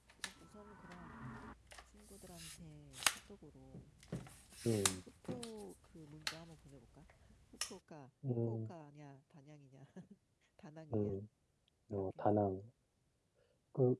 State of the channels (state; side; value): identical; both; correlation 1.00